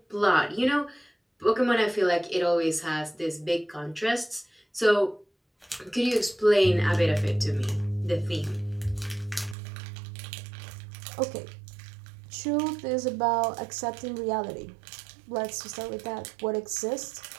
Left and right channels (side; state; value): left; drops out; at 9.6 s